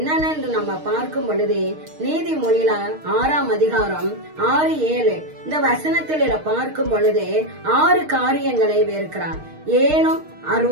நம்ம பார்க்கும் பொழுது நீதிமொழியில 6ஆம் அதிகாரம் 6-7 இந்த வசனத்தில் பார்க்கும் பொழுது 6 காரியங்களை வெறுக்கிறார். ஏனும்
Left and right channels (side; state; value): left; late; 6.5 ms